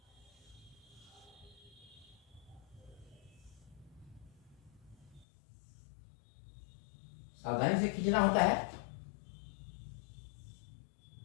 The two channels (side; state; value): right; drops out; at 5.2 s